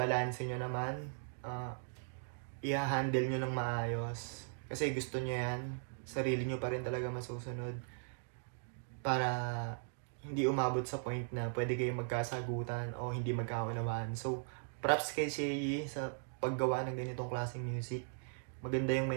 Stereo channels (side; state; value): left; silent; digital silence